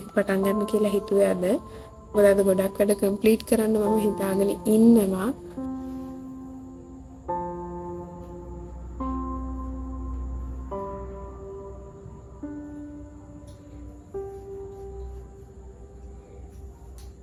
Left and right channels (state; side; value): identical; both; correlation 1.00